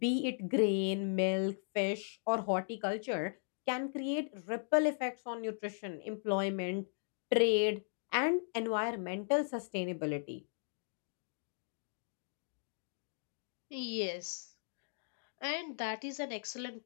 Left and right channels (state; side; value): silent; right; digital silence